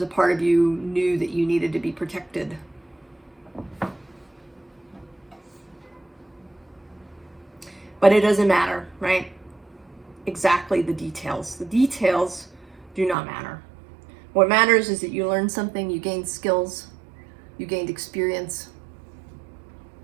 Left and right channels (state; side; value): drops out; left; at 13.2 s